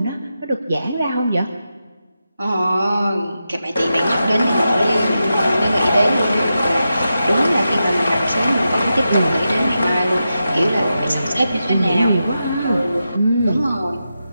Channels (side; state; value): both; inverted; correlation -0.89